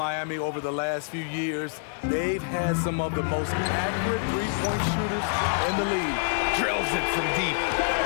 over the last few years, they've had some of the most accurate three-point shooters in the league. Drills it from deep.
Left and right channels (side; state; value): right; silent; digital silence